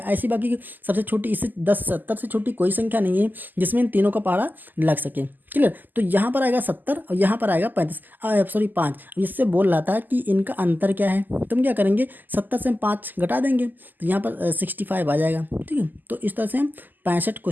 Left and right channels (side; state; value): left; late; 0.086 ms